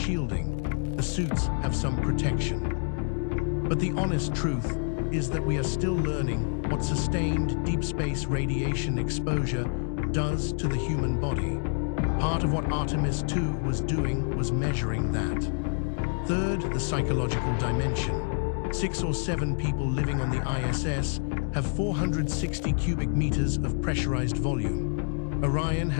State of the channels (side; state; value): right; silent; 60 dB below the other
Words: the suits have some protection. But the honest truth is that we are still learning what sustained deep space radiation exposure does to the human body. Part of what Artemis II was doing was measuring that. Third, the psychological dimension. 6 or 7 people living on the ISS have 460 cubic meters of pressurized volume. Orion